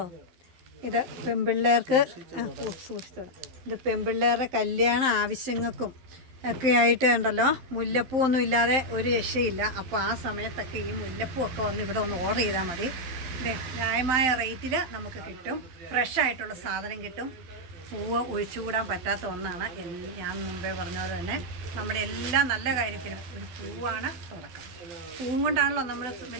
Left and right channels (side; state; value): left; late; 11 ms